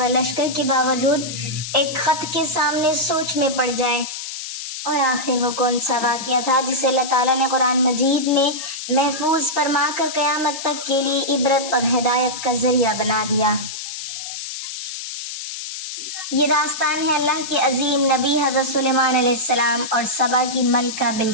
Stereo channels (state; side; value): noise; left; hiss, 8 dB below the sound